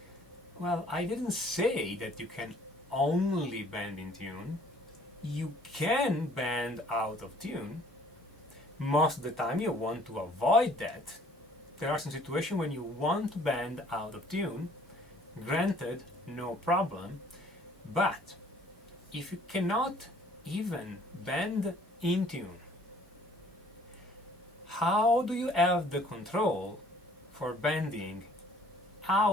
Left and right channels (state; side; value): normal; both; correlation 0.57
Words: well, I didn't say that you can only bend in tune. You can bend out of tune. Most of the time you want to avoid that. There are some situations when you want to bend out of tune. Granted, no problem. But if you cannot even bend in tune, how do you have the control for bending